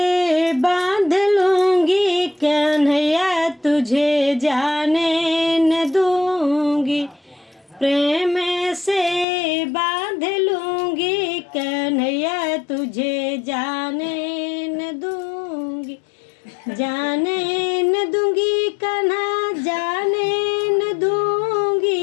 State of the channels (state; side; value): drops out; right; at 9.2 s